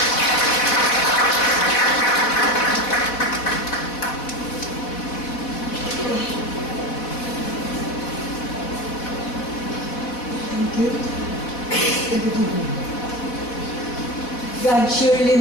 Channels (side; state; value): right; late; 4.1 ms